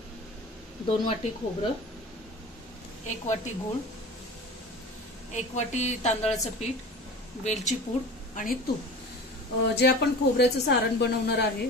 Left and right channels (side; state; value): both; normal; correlation 0.37